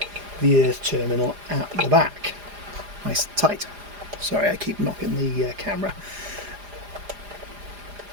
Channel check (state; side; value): late; left; 4.9 ms